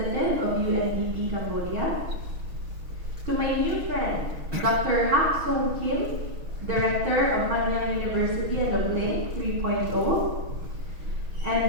of UNDP Cambodia. To my new friend, Dr. Hak Song Kim, Director of Nanyang University and of Link 3.0,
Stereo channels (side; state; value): left; late; 6.4 ms